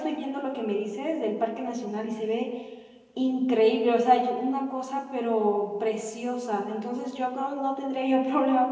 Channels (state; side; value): identical; both; correlation 1.00